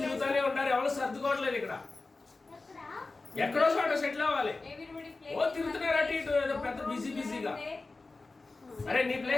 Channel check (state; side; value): quieter; right; 3.5 dB